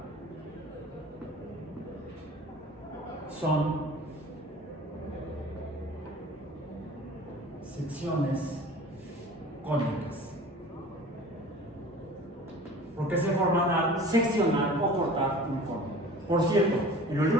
Son secciones cónicas. ¿Por qué se forman al seccionar o cortar un cono? Por cierto, en los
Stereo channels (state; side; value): normal; both; correlation 0.42